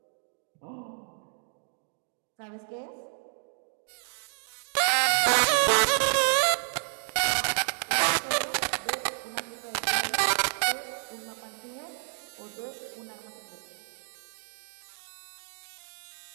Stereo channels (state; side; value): silent; left; digital silence